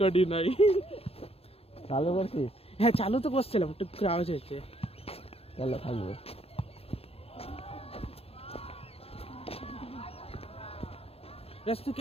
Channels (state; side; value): late; right; 0.28 ms